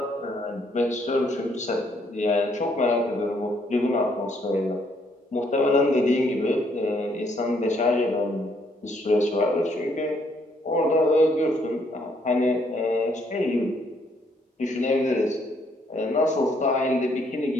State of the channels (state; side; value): normal; both; correlation 0.69